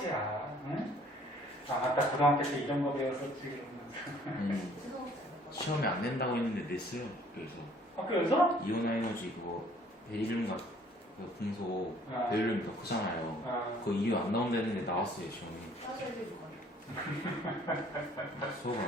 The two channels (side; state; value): both; normal; correlation 0.58